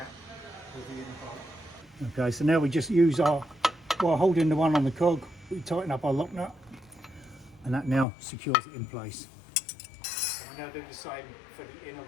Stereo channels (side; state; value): right; drops out; at 8.1 s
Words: with the inner bolt. Okay, so now we just use while holding the one on the cog, we tighten up our lock nut, and that now secures it in place. And we now do the same for the inner